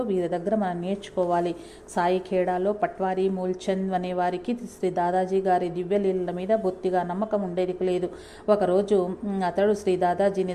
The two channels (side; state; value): both; identical; correlation 1.00